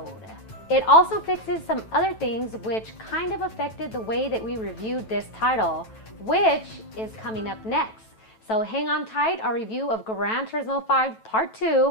It also fixes some other things which kind of affected the way that we reviewed this title, which is coming up next. So hang on tight, our review of Gran Turismo 5 Part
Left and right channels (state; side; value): late; right; 9.1 ms